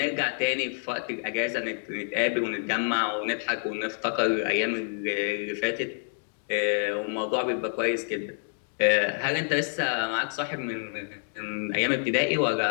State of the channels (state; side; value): silent; right; digital silence